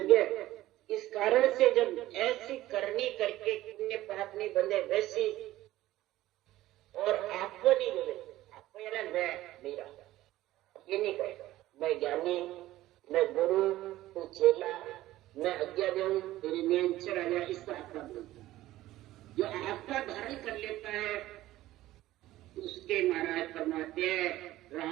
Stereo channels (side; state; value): left; quieter; 15.6 dB